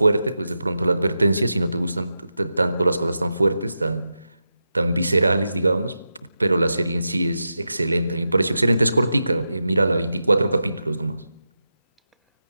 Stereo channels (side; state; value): both; inverted; correlation -0.89